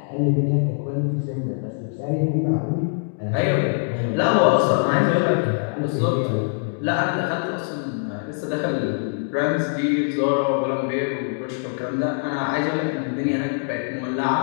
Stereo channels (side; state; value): right; silent; digital silence